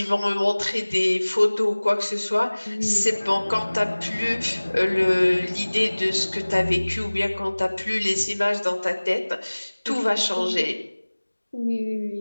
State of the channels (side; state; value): both; inverted; correlation -1.00